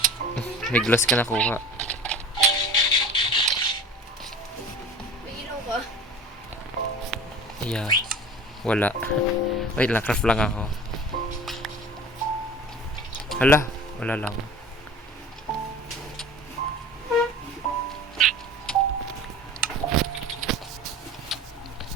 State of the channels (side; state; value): both; normal; correlation 0.39